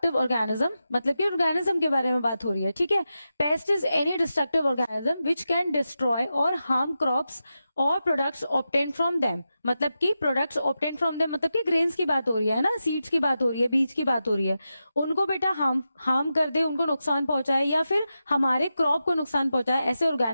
organism, मतलब कि ऑर्गेनिज्म के बारे में बात हो रही है। ठीक है, paste is any destructive organism which can destroy और हार्म क्रॉप्स और प्रोडक्ट्स ऑब्टेन फ्रॉम देम, मतलब कि प्रोडक्ट्स ऑब्टेन फ्रॉम देम मतलब कि ग्रेन्स की बात हो रही है ना, सीड्स की बात हो रही है, बीज की बात हो रही है, उनको बेटा हार्म कर दे, उनको नुकसान पहुंचाए या फिर हमारे क्रॉप को नुकसान पहुंचाए, ऐसे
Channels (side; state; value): both; inverted; correlation -0.90